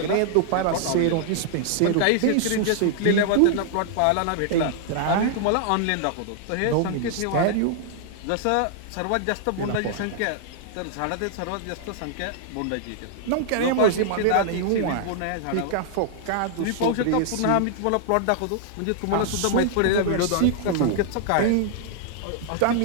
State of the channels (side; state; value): both; different; correlation -0.01